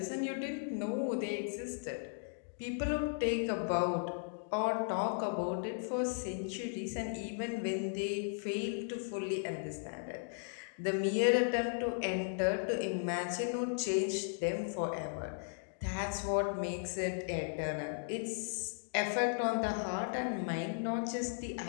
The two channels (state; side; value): silent; right; digital silence